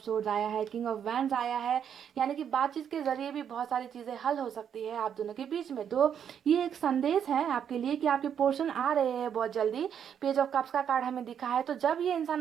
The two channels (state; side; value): quieter; left; 8.4 dB